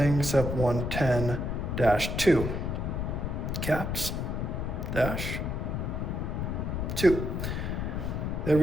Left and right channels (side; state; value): left; noise; rumble, 2 dB below the sound